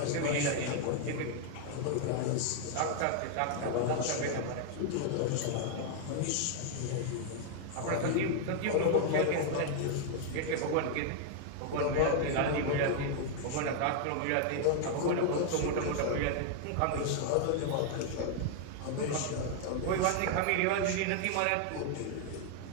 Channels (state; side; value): different; both; correlation 0.00